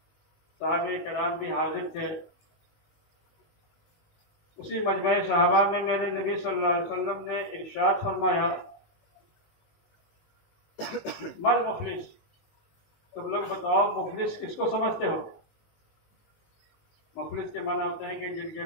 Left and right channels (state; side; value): late; right; 19 ms